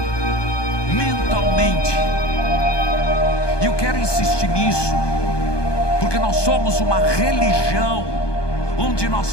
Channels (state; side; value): late; right; 1.2 ms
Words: mentalmente. E eu quero insistir nisso, porque nós somos uma religião onde